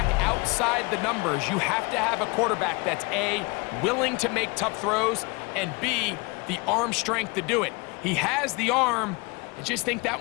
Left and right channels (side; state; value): right; quieter; 27.6 dB